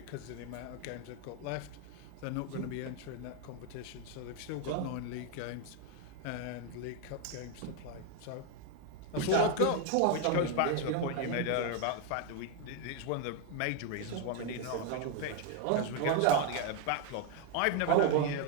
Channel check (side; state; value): both; different; correlation 0.01